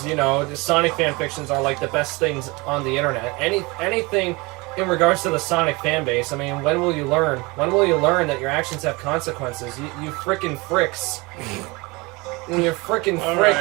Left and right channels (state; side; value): quieter; left; 25.2 dB